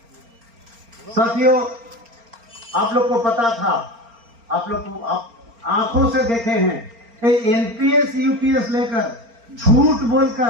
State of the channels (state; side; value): late; left; 4.3 ms